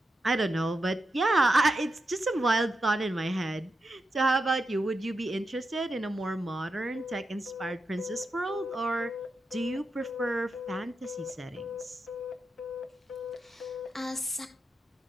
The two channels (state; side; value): normal; both; correlation 0.87